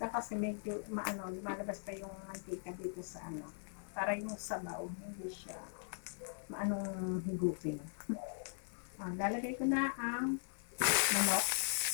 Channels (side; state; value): right; silent; digital silence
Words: Kasi medyo lumalabas pa yung mantika dito sa para yung sabaw, hindi siya maanong higupin. Lalagay ko na ang manok.